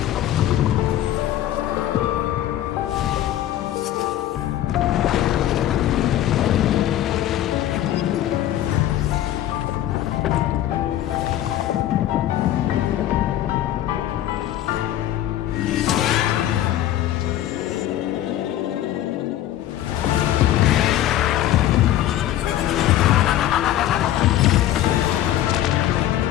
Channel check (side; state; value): right; quieter; 12.7 dB